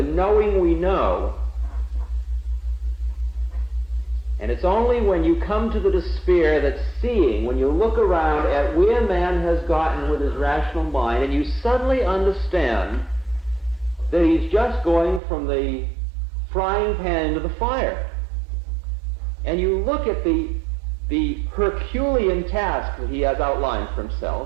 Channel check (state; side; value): drops out; left; at 15.2 s